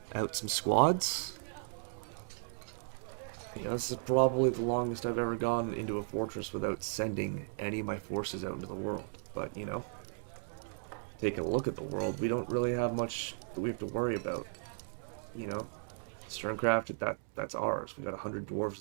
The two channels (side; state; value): left; silent; digital silence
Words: out some squads. Yeah, this is probably the longest I've ever gone into a fortress without sending any of my forces out into the world. But, you know, taking a look at the world, we don't really have much that we have to worry about. You know, Sterncraft, that's ours. We got 100